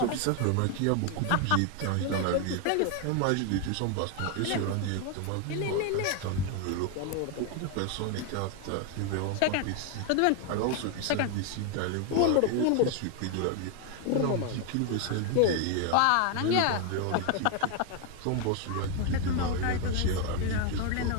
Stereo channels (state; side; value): different; both; correlation 0.01